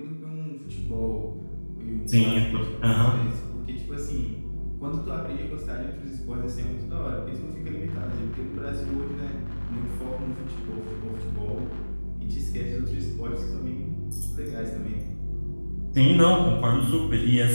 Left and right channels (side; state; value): both; inverted; correlation -1.00